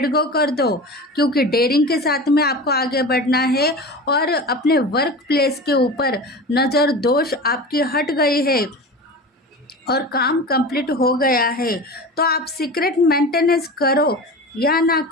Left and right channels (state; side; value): normal; both; correlation 0.32